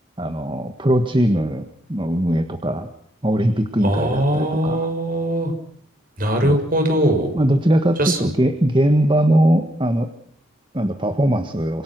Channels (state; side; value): normal; both; correlation 0.76